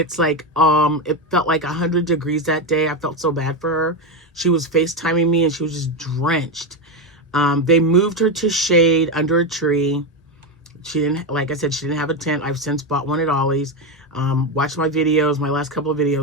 like, it felt like 100 degrees that day. I felt so bad for her. She was FaceTiming me, and she was just drenched. They moved her to shade under a tree. She didn't, like I said, she didn't have a tent. I've since bought one at Ollie's. Watch my videos, my last couple of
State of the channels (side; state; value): both; normal; correlation 0.11